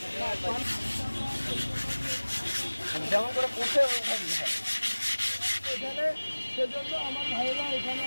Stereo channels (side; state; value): both; inverted; correlation -1.00